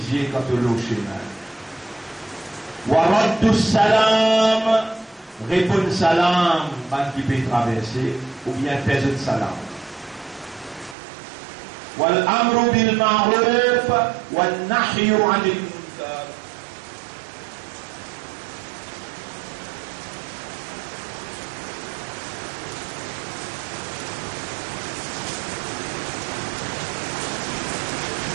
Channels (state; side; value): drops out; left; at 11.0 s